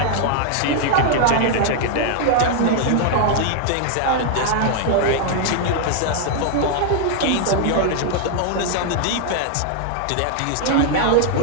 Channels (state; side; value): different; both; correlation 0.00